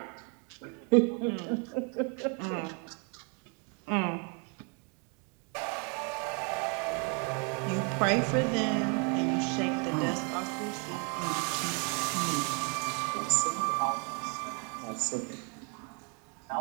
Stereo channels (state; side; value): quieter; left; 36.5 dB